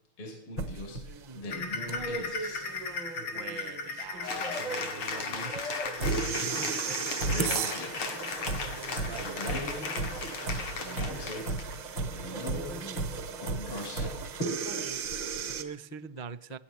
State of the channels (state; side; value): late; right; 6.5 ms